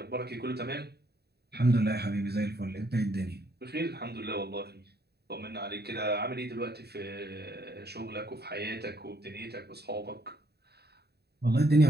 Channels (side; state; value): left; late; 0.47 ms